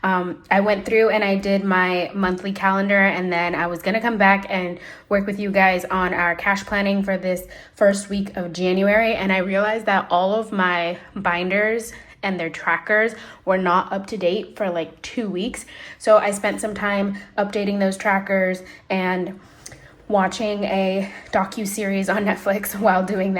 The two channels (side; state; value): both; identical; correlation 1.00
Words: I went through and I did my monthly calendar, and then I was gonna come back and work with you guys on our cash planning for this first week of January. And I realized that all of my binders and their trackers were not up to date for like 2 weeks. So I spent some time updating those trackers and watching a docu-series on Netflix while doing